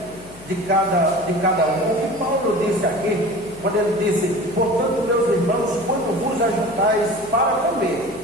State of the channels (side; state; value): left; noise; hum, 20 dB below the sound